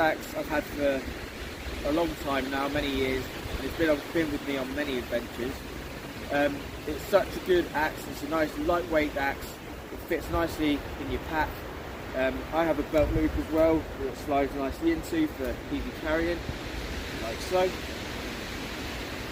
I've had for a long time now, many years, and it's been with me on many adventures. It's such a good axe. It's a nice lightweight axe. It fits nicely in your pack. I have a belt loop as well that it slides nicely into for easy carrying, like so.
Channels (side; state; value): both; identical; correlation 1.00